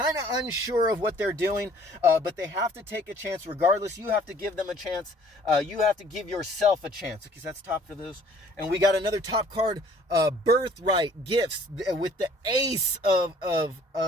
of unsure of what they're doing, but they have to take a chance regardless. You have to give them a chance. You have to give yourself a chance. Okay, so that's top for those. And we got another top card, Birthright Gifts, with the Ace of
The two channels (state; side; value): normal; both; correlation 0.56